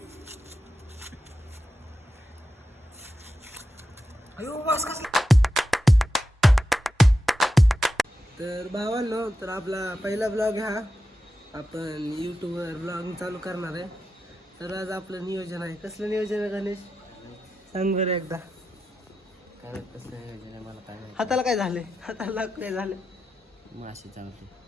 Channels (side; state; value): both; normal; correlation 0.89